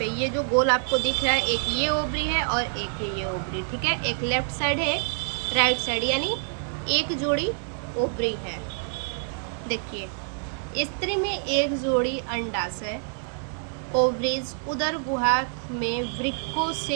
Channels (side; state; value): left; silent; 60 dB below the other